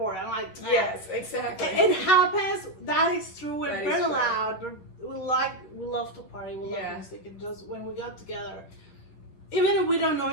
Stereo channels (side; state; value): right; late; 11 ms